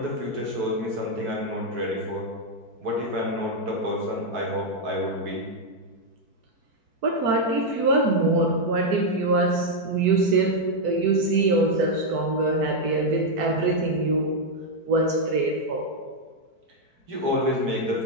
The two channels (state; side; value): late; left; 4.6 ms